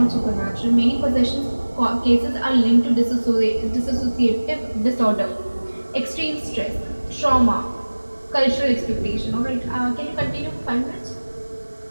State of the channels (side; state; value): both; inverted; correlation -1.00